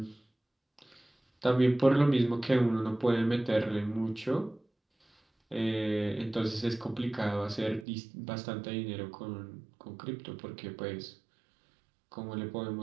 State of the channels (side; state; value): left; drops out; at 7.9 s